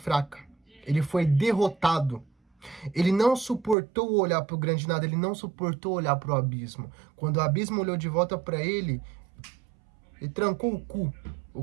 Ele foi derrotado. Ele não suportou olhar para o grande nada, ele não suportou olhar para o abismo. Quando o abismo olhou de volta para ele, ele trancou o cu. O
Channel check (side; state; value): left; drops out; at 3.8 s